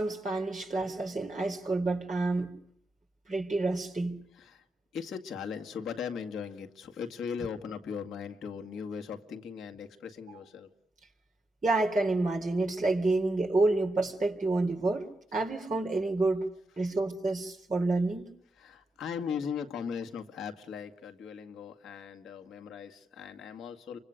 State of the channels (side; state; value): both; normal; correlation 0.85